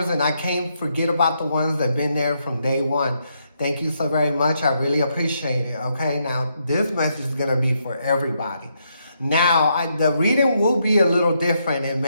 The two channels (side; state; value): both; inverted; correlation -0.78